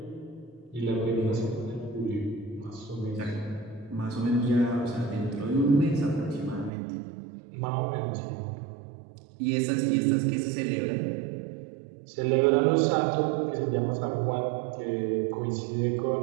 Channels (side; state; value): left; drops out; at 6.7 s